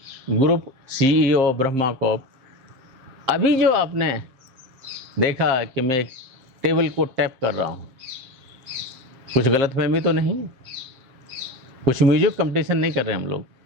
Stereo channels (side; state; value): left; late; 7.5 ms